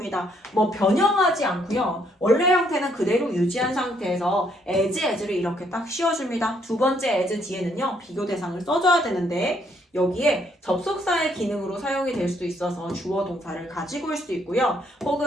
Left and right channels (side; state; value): both; normal; correlation 0.70